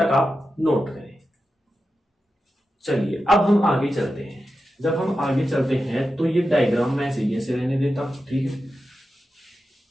आप नोट करें। चलिए अब हम आगे चलते हैं। जब हम आगे चलते हैं तो ये डायग्राम मैं ऐसे रहने देता हूं, ठीक है।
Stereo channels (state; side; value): normal; both; correlation 0.91